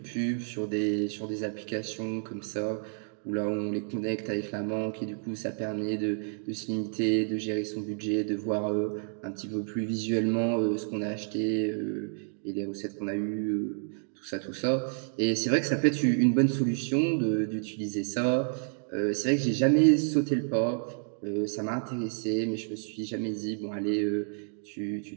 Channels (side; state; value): left; silent; digital silence